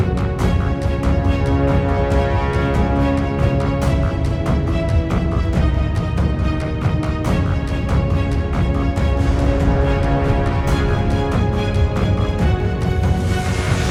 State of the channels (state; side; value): identical; both; correlation 1.00